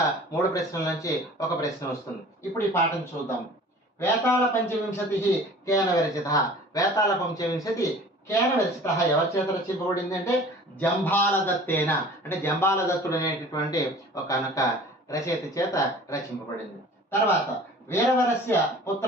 3 ప్రశ్నల నుంచి ఒక ప్రశ్న వస్తుంది. ఇప్పుడు ఈ పాఠం చూద్దాం. వేతాళ పంచవింశతి కేన విరచిత. వేతాళ పంచవింశతి కేన విరచిత ఎవరి చేత రచింపబడింది అంటే జంబాలదత్తేన. అంటే జంబాలదత్తుడు అనేటటువంటి ఒక రచయిత చేత రచింపబడింది. తర్వాత వీరవరస్య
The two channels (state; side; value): normal; both; correlation 0.45